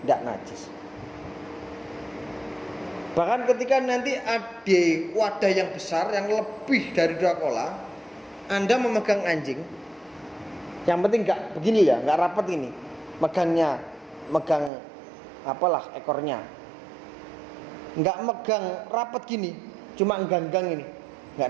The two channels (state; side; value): drops out; left; at 14.7 s